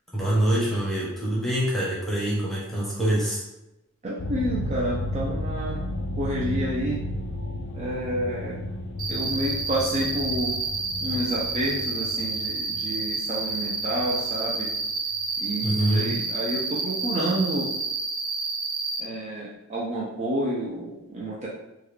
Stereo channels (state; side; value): normal; both; correlation 0.49